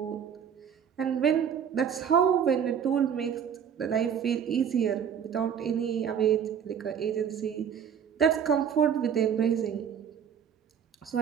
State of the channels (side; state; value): left; quieter; 8.0 dB